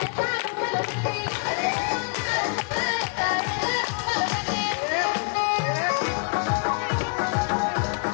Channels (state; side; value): quieter; right; 35.9 dB